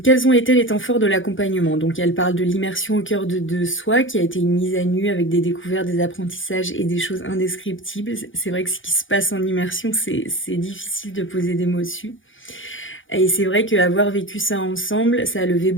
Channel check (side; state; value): right; late; 0.57 ms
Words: ont été les temps forts de l'accompagnement? Donc elle parle de l'immersion au cœur de soi, qui a été une mise à nu avec des découvertes, des apprentissages et des choses indescriptibles. C'est vrai que ce qui se passe en immersion, c'est difficile de poser des mots dessus. Et c'est vrai qu'avoir vécu ça ensemble, ça a levé